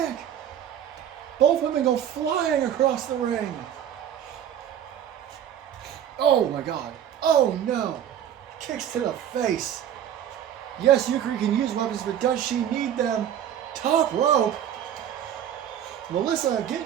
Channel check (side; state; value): left; quieter; 10.0 dB